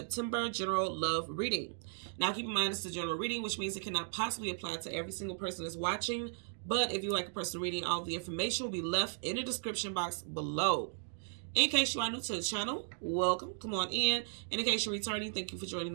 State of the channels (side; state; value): left; silent; digital silence